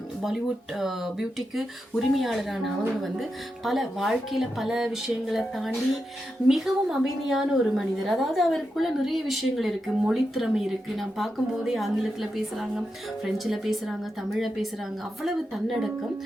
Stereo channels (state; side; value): normal; both; correlation 0.87